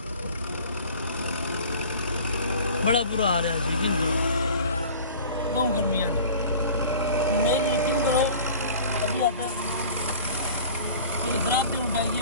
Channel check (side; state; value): both; inverted; correlation -0.42